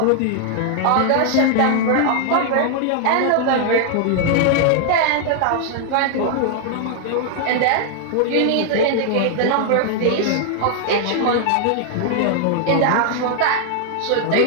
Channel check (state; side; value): different; both; correlation 0.00